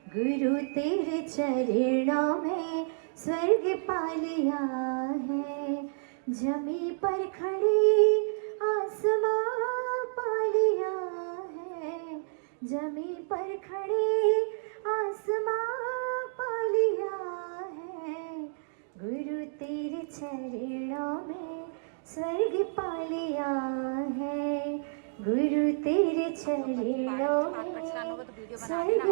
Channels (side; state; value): left; silent; digital silence